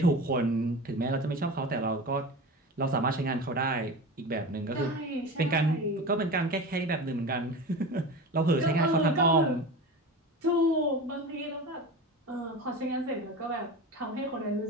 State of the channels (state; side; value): normal; both; correlation 0.30